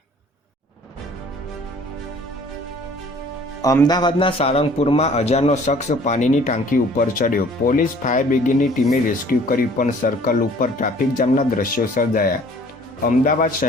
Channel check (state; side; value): normal; both; correlation 0.53